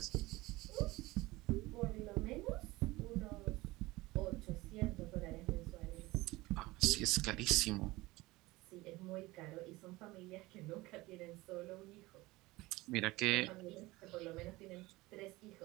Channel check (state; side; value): quieter; left; 20.4 dB